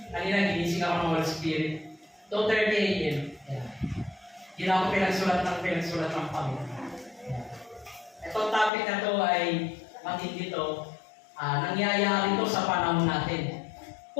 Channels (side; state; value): right; drops out; at 8.7 s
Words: Kanina, ginising ako ng Holy Spirit. 2:30 a.m. Yeah. Hindi na ako pinagsulat ng Panginoon. Itong topic na to ay matindi to. Nangyayari to sa panahon natin.